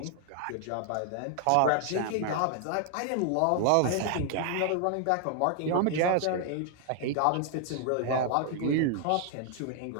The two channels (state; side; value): different; both; correlation 0.00